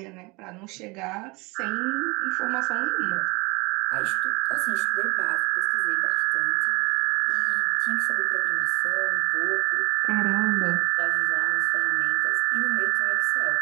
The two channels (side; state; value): left; quieter; 26.2 dB